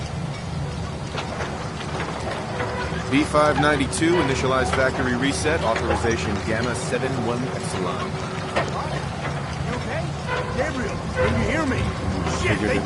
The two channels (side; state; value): both; identical; correlation 1.00